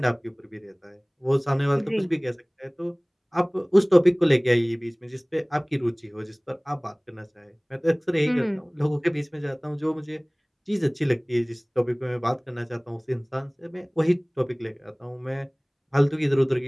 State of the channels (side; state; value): both; identical; correlation 1.00